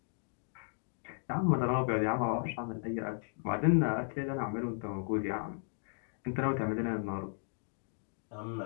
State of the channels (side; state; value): right; silent; 54 dB below the other